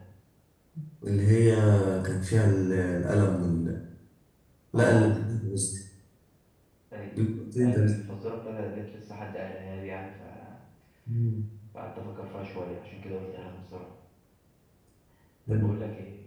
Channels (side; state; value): both; identical; correlation 1.00